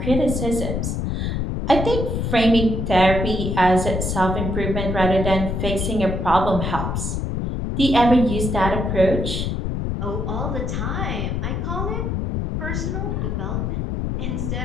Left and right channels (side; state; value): left; noise; rumble, 1 dB below the sound